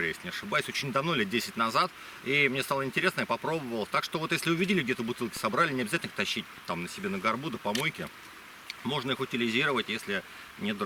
если не ошибаюсь, очень давно, лет 10 назад. И мне стало интересно, я попробовал. Так что вот если увидели где-то бутылки, собрали, не обязательно их тащить там на себе на горбу до помойки. Можно их утилизировать, если нет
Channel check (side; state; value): both; identical; correlation 1.00